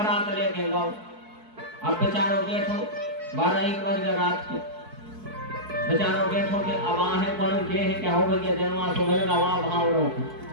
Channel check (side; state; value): left; late; 4.6 ms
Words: लेके गाओ, अब बेचारो बैठो 12-1 बज गए रात की, बेचारो बैठो के अब आहे कौन के है क्या हो गया जनवा सो मेरे गवा भाव रो।